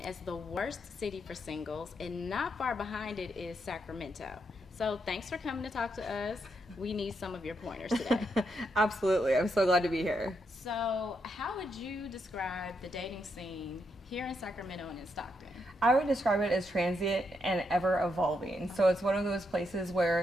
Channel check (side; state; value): both; normal; correlation 0.80